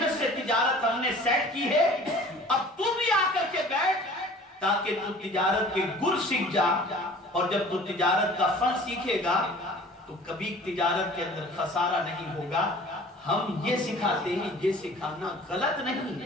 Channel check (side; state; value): both; normal; correlation 0.47